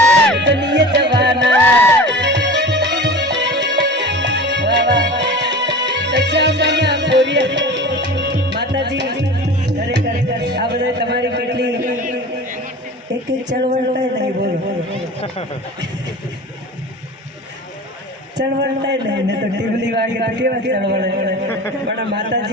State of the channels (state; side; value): normal; both; correlation 0.36